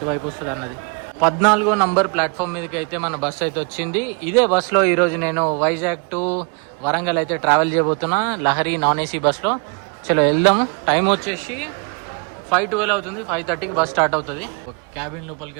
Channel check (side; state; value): left; quieter; 35.3 dB